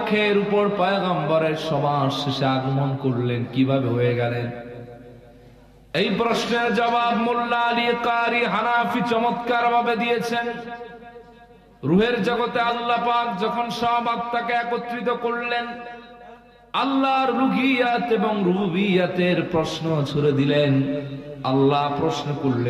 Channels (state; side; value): identical; both; correlation 1.00